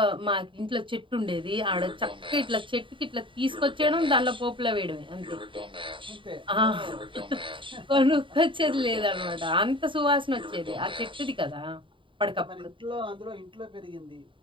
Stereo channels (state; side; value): late; left; 0.25 ms